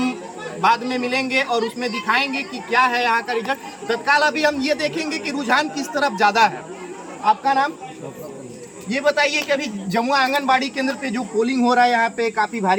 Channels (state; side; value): identical; both; correlation 1.00